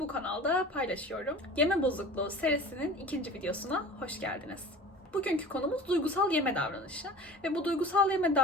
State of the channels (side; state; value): both; normal; correlation 0.40